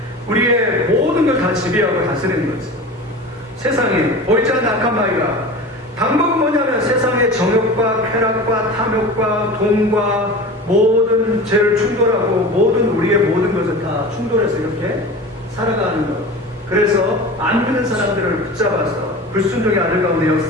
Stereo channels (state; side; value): normal; both; correlation 0.33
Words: 우리의 모든 걸 다 지배하고 다스리는 거죠. 세상에 보이지 않는 악한 마귀가 방법은 뭐냐면 세상의 정욕과 쾌락과 탐욕과 돈과 모든 죄를 충돌하고 모든 우리의 모든 것을 다 충돌해서 이렇게 살아가는 것. 그래서 안 믿는 사람들을 붙잡아서 불순종의 아들 가운데